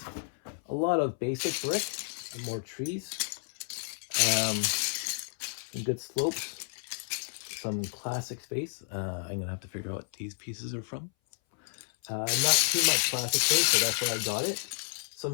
a lot of basic brick and more trees. Some good slopes. Some classic space. I'm gonna have to figure out what these pieces are from. Not too much classic space, so that's why I got it.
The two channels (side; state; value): right; silent; 57 dB below the other